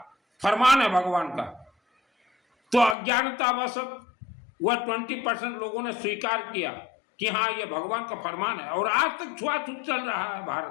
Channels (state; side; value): drops out; right; at 3.0 s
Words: फरमान है भगवान का। तो अज्ञानतावश वह 20% लोगों ने स्वीकार किया कि हाँ ये भगवान का फरमान है, और आज तक छुआछूत चल रहा है